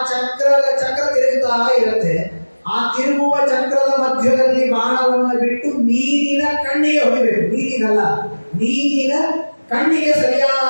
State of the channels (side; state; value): both; inverted; correlation -1.00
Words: ಚಕ್ರ ತಿರುಗುತ್ತಾ ಇರುತ್ತೆ. ಆ ತಿರುಗುವ ಚಕ್ರದ ಮಧ್ಯದಲ್ಲಿ ಬಾಣವನ್ನು ಬಿಟ್ಟು ನೀರಿನ ಕಣ್ಣಿಗೆ ಹೊಡಿಬೇಕು. ನೀರಿನ ಕಣ್ಣಿಗೆ